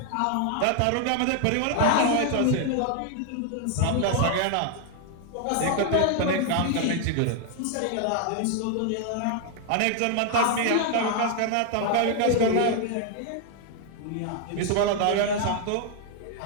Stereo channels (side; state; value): both; different; correlation 0.00